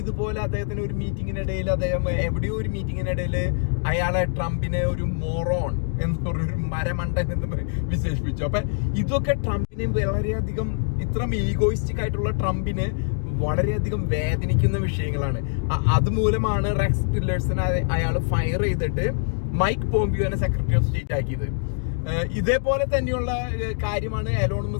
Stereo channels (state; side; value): silent; right; digital silence